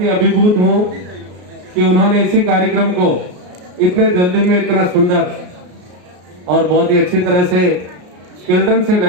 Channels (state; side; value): late; left; 33 ms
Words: अभिभूत हूँ कि उन्होंने इसी कार्यक्रम को इतने जल्दी में इतना सुंदर और बहुत ही अच्छी तरह से चिल्ड्रन से